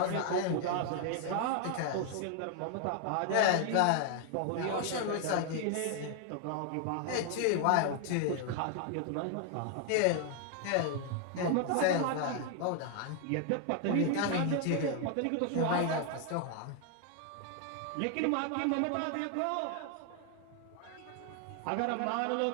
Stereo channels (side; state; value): both; different; correlation 0.00